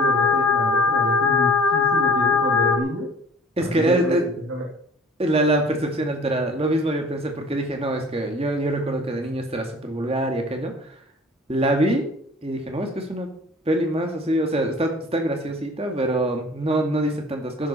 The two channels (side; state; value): both; normal; correlation 0.48